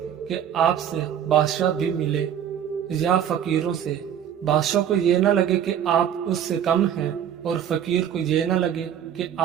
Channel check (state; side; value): quieter; left; 9.5 dB